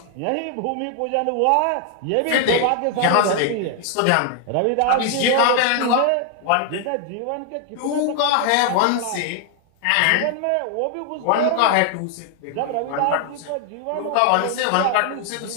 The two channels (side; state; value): both; different; correlation 0.00